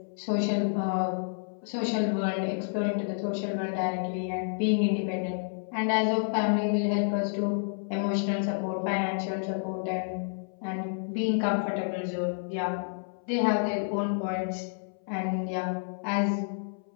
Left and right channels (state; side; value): silent; right; 58 dB below the other